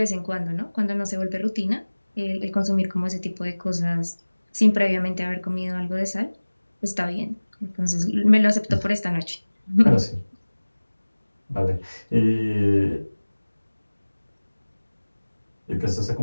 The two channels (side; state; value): both; inverted; correlation -1.00